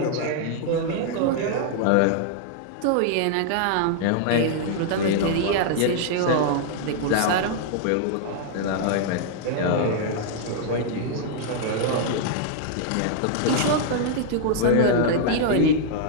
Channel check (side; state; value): both; different; correlation -0.01